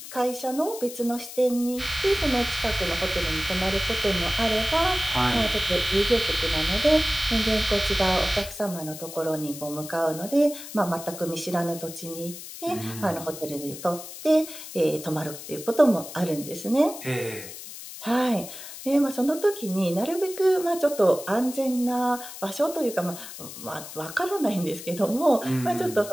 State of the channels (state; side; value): noise; left; hiss, 12 dB below the sound